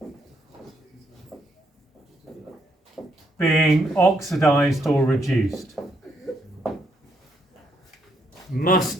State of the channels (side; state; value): both; normal; correlation 0.74